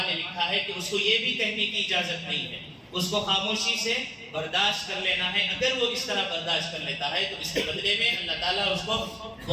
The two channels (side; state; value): both; identical; correlation 1.00